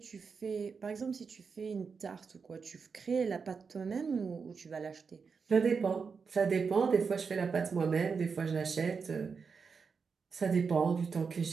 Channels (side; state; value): left; quieter; 5.5 dB